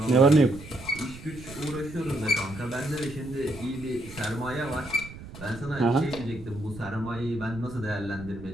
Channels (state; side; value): noise; right; rumble, 15 dB below the sound